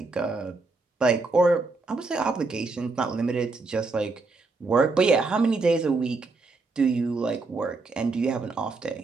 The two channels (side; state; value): left; quieter; 3.7 dB